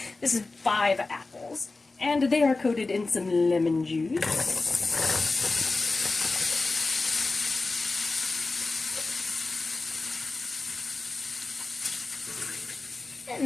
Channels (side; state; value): right; quieter; 3.5 dB